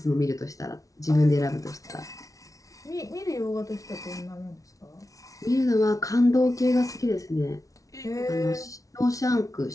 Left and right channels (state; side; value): late; right; 0.17 ms